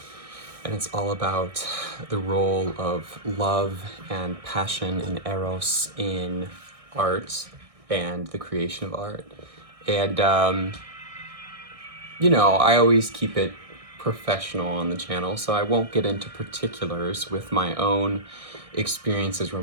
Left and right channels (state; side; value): late; left; 1.6 ms